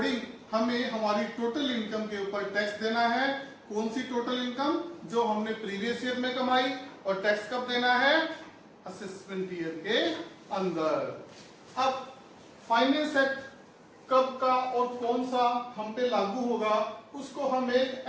हमें हमारी टोटल इनकम के ऊपर टैक्स देना है। कौन सी टोटल इनकम? जो हमने प्रीवियस ईयर में कमाई। और टैक्स कब देना है? असेसमेंट ईयर के अंदर। अब फाइनेंस एक्ट कब का और कौन सा हम पे लागू होगा उसको हम एक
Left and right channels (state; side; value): identical; both; correlation 1.00